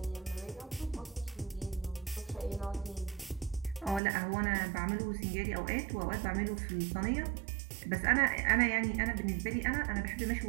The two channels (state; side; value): drops out; left; at 4.0 s